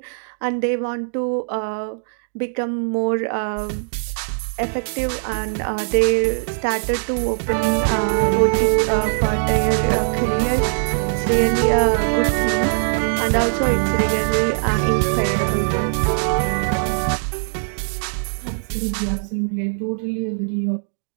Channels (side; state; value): left; silent; digital silence